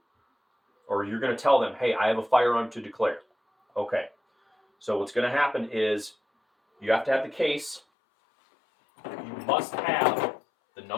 or you're going to tell them, "Hey, I have a firearm to declare." Okay, So what's going to happen is you have to have the case. You must have the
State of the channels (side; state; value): right; drops out; at 7.8 s